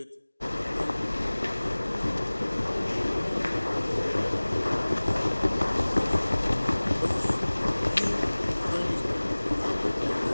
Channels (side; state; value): both; inverted; correlation -1.00